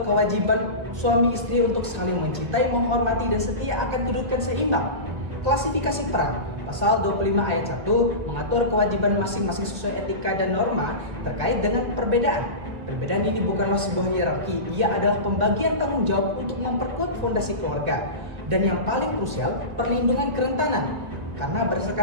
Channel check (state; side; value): late; left; 1.8 ms